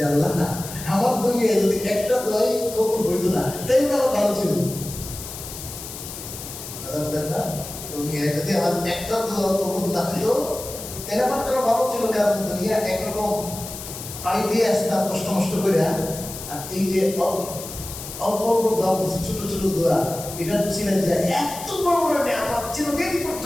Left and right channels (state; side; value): noise; left; hiss, 10 dB below the sound